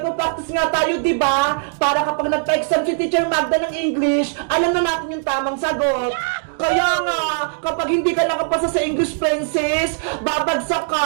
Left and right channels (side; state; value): left; silent; digital silence